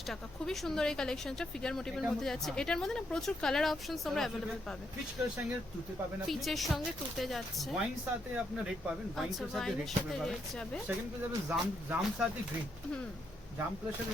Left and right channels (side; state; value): both; normal; correlation 0.78